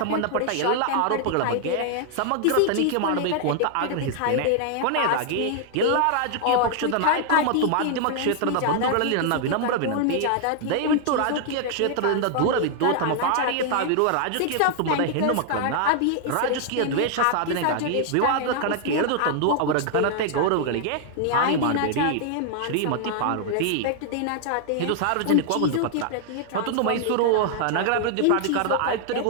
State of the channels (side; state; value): both; different; correlation 0.00